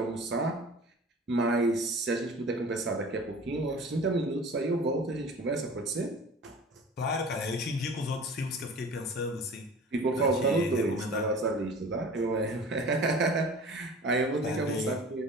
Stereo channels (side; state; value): both; normal; correlation 0.42